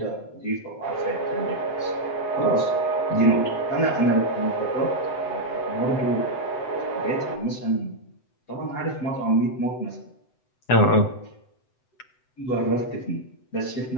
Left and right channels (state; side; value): late; right; 7.9 ms